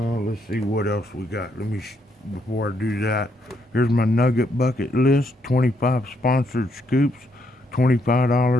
see what else we got. Before I do that, here's my Nugget Bucket list. 25 sponsored scoops,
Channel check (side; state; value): both; normal; correlation 0.75